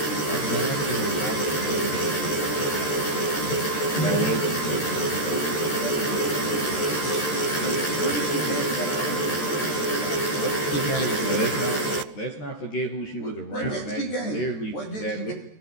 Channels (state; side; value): late; right; 13 ms